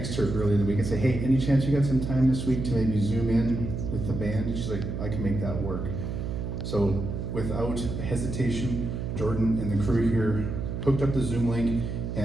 her earlier in the week and say, hey, any chance you got some time this week to maybe zoom in with the band? And she's like, I can make that work. So without hesitation, Jordan and the crew here hooked up the Zoom link,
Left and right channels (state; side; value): noise; right; hum, 4 dB below the sound